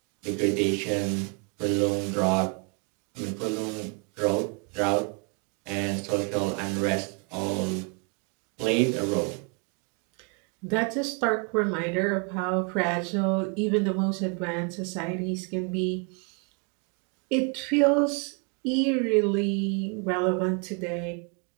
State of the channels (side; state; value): left; quieter; 34.9 dB